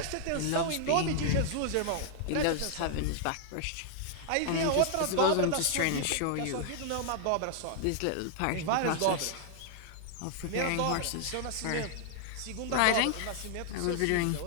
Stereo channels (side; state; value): both; different; correlation 0.00